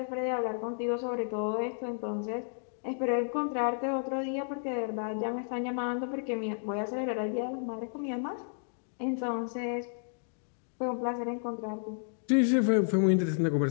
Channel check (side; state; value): right; silent; digital silence